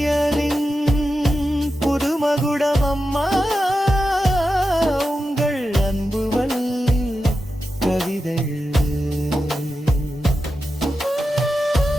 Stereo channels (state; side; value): normal; both; correlation 0.90